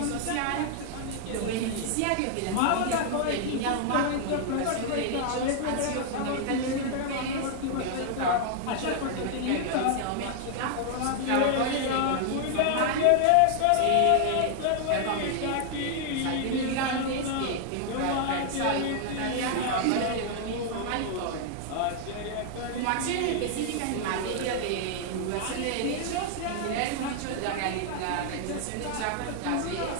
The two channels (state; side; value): different; both; correlation -0.01